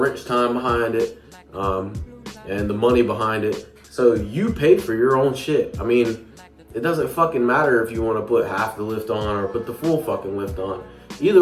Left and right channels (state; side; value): identical; both; correlation 1.00